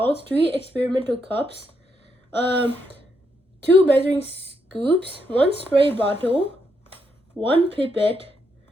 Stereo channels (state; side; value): normal; both; correlation 0.78